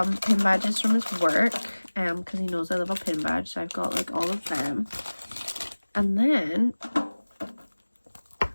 pin badges from his work, because he knows I love a pin badge, so I've got like all of them. And then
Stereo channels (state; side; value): inverted; both; correlation -1.00